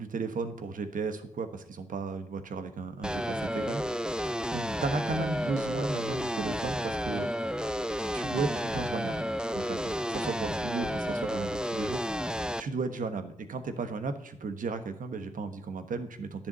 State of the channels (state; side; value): normal; both; correlation 0.79